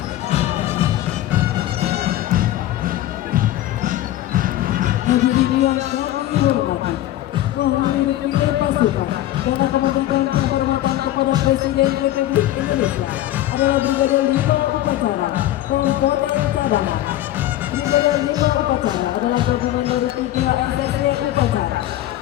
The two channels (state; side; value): quieter; right; 14.0 dB